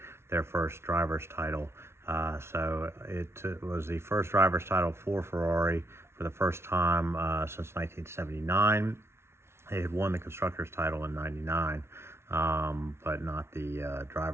their first driver's title. So it was the first driver's title for Ferrari for the first time since 1979. They had won the constructors title in 99, but not the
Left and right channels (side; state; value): left; late; 0.12 ms